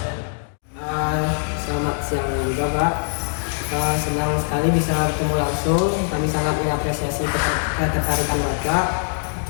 Selamat siang juga Pak. Senang sekali bisa bertemu langsung. Kami sangat mengapresiasi ketertarikan Bapak.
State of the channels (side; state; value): right; silent; 64 dB below the other